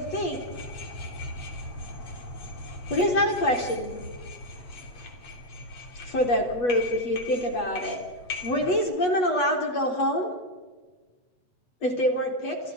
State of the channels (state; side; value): late; right; 8.2 ms